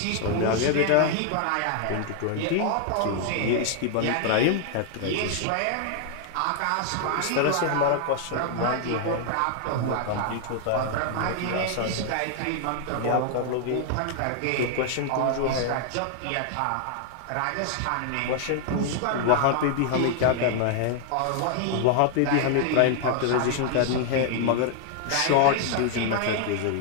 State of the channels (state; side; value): different; both; correlation 0.00